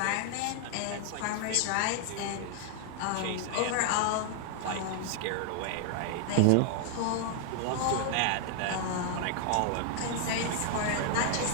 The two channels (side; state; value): both; different; correlation 0.00